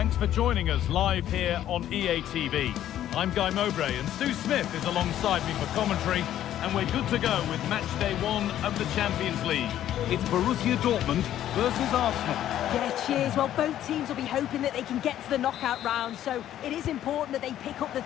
for joining us live here on EA TV. I'm Guy Mowbray and Sue Smith is alongside me for commentary, and we're good to go with match day 1 of the Champions League. It's Borussia Dortmund versus Arsenal. Yeah, cheers. Well, both teams will be hoping that they can get to the knockout round, so it is important that they pick up the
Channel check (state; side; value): quieter; right; 11.8 dB